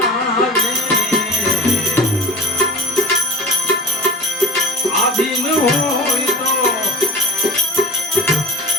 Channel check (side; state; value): both; normal; correlation 0.35